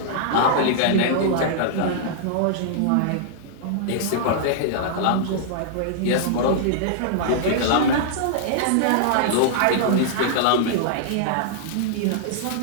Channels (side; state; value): both; different; correlation -0.01